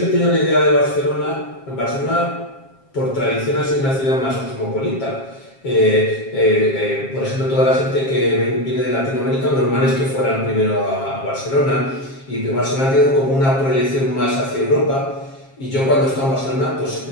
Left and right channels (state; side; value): late; right; 7.4 ms